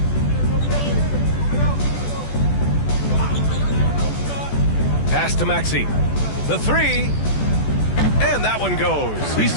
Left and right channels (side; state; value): right; late; 14 ms